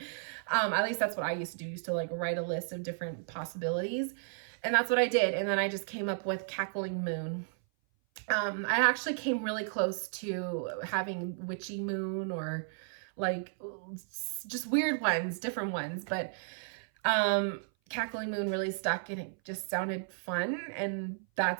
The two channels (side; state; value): left; silent; 55 dB below the other